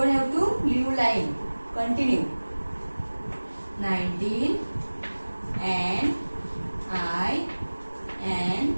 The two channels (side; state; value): both; inverted; correlation -1.00